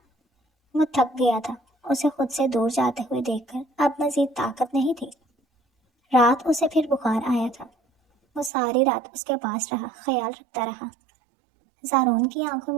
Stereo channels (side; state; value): left; drops out; at 8.5 s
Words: وہ تھک گیا تھا، اسے خود سے دور جاتے ہوئے دیکھ کر اب مزید طاقت نہیں تھی۔ رات اسے پھر بخار آیا تھا۔ وہ ساری رات اس کے پاس رہا، خیال رکھتا رہا۔ زارون کی آنکھوں